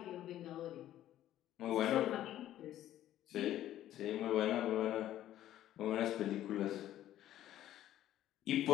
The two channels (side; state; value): right; quieter; 12.7 dB